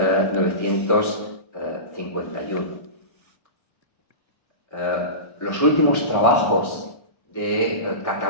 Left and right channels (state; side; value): late; right; 1.6 ms